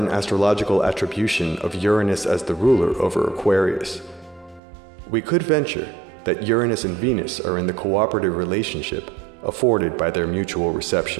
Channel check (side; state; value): left; drops out; at 4.6 s